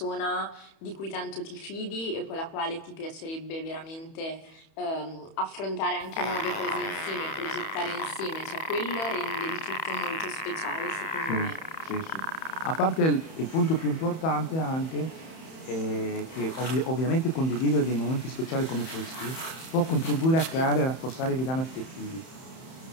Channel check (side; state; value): right; late; 31 ms